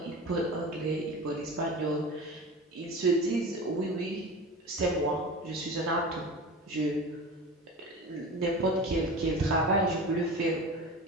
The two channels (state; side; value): normal; both; correlation 0.32